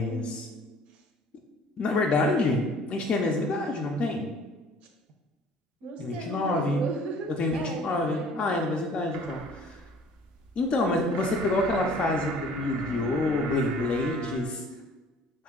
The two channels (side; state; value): both; normal; correlation 0.51